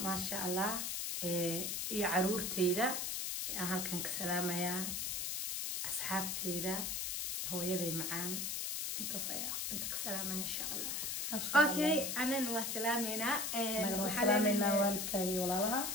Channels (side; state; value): left; noise; hiss, 1 dB below the sound